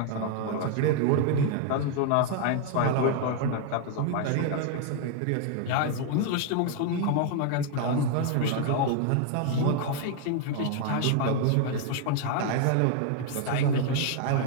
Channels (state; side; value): different; both; correlation 0.00